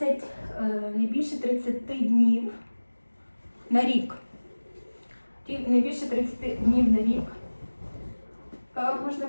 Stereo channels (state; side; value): inverted; both; correlation -1.00